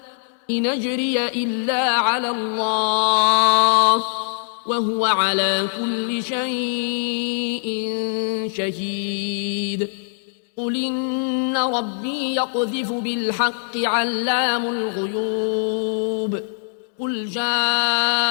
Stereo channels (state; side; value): silent; right; digital silence